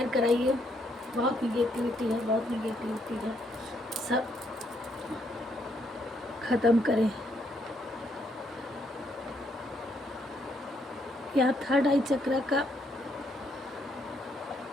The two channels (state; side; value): normal; both; correlation 0.73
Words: कराइए। बहुत निगेटिविटी है, बहुत निगेटिविटी है, सब ख़त्म करें। यहाँ थर्ड आई चक्र का